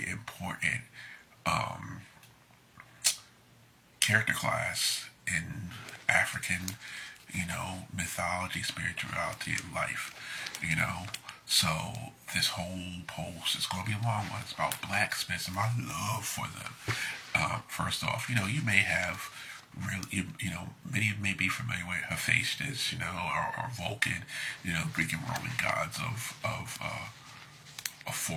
important character class in African, mythology, spirituality, and life. So this whole post is going to be a long one. It's about blacksmiths and my love for them. First off, you may have really, many may be familiar with Hephaestus, or Vulcan, Greek and Roman gods of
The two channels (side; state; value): both; identical; correlation 1.00